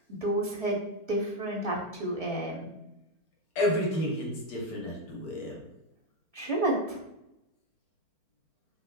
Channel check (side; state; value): right; late; 4.4 ms